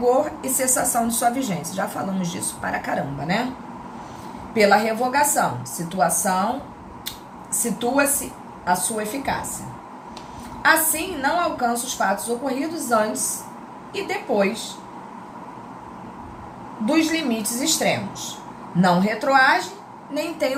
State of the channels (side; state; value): both; identical; correlation 1.00